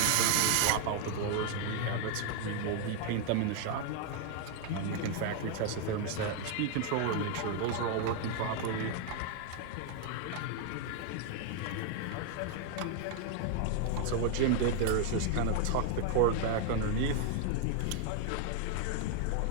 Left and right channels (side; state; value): both; different; correlation 0.00